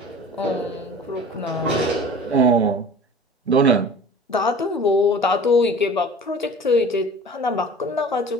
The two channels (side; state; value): both; normal; correlation 0.42